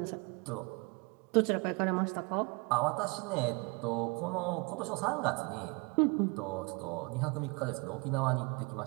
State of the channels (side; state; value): left; quieter; 30.0 dB